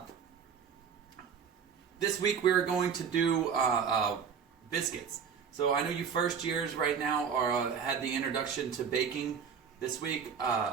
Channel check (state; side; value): quieter; left; 6.9 dB